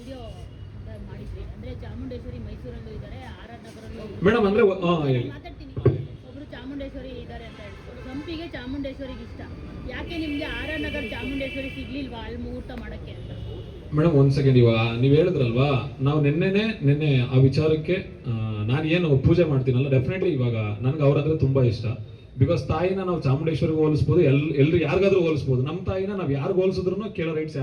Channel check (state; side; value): identical; both; correlation 1.00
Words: ಮಾಡಿದ್ರಿ, ಅಂದ್ರೆ ಚಾಮುಂಡೇಶ್ವರಿ ಮೈಸೂರಲ್ಲೂ ಇದ್ದಾರೆ, ಆರ್.ಆರ್. ನಗರಲ್ಲೂ ಮೇಡಮ್ ಅಂದ್ರೆ ಮಾತಾಡ್ತೀನಿ. ಒಬ್ರು ಚಾಮುಂಡೇಶ್ವರಿ ಇದ್ದಾರೆ ಅಂತ ಹೇಳ್ತಾರೆ. ಸಂಪಿಗೆ ಚಾಮುಂಡೇಶ್ವರಿಗೆ ಇಷ್ಟ. ಯಾಕೆ ನಿಮ್ಗೆ ಆರ್.ಆರ್. ನಗರ ಚಾಮುಂಡೇಶ್ವರಿ ಸಿಗ್ಲಿಲ್ವಾ ಅಲ್ಲಿ ಮುಹೂರ್ತ ಮಾಡಕ್ಕೆ ಅಂತ? ಮೇಡಮ್ ಒಂದ್ ಸೆಕೆಂಡ್, ಇವಾಗ ನೀವ್ ಹೇಳಿದ್ರಲ್ವಾ, ನಾವು ನಿನ್ನೆ ಆ ವಿಚಾರಕ್ಕೆ ನಾನು ಏನು ಪೂಜೆ ಮಾಡ್ತೀನಲ್ಲ, ಡೆಫಿನೆಟ್ಲಿ ಇವಾಗ ನನ್ಗೆ ಅವ್ರಂದ್ರೆ ತುಂಬಾ ಇಷ್ಟ. ಬಿಕಾಸ್ ತಾಯಿನ ನಾವು ಚಾಮುಂಡೇಶ್ವರಿಗೆ ಹೋಲಿಸ್ಬೋದು, ಎಲ್ರು ಯಾರಿಗಾದ್ರೂ ಹೋಲಿಸ್ಬೋದು. ನಮ್ಮ ತಾಯಿನ ನಾವು ಯಾರಿಗೂ ಹೋಲಿಸಿದ್ರು ಕೇಳೋ ರೈಟ್ಸ್